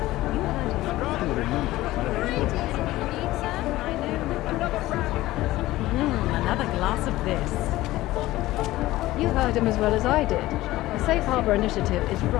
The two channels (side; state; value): right; quieter; 16.9 dB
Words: Another glass of this. You heard him as well as I did. The Safe Harbor Initiative is